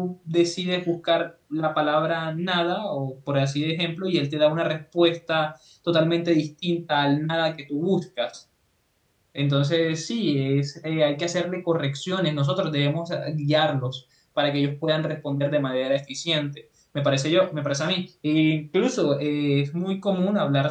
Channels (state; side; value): identical; both; correlation 1.00